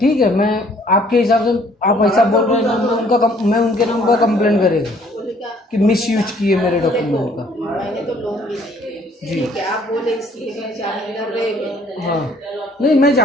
है, मैं आपके हिसाब से आप ऐसा बोल रहे हैं ना, मैं उनके नाम पर कंप्लेन करेगा बोलेगा कि मिस यूज किए मेरे डॉक्यूमेंट का। मैंने तो लोन भी नहीं लिया। जी। ठीक है, आप बोले इसलिए मैं जामीनदार रह गई। हाँ, नहीं मैं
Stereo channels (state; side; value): normal; both; correlation 0.60